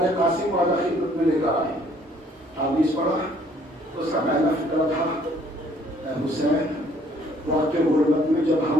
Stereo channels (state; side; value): normal; both; correlation 0.61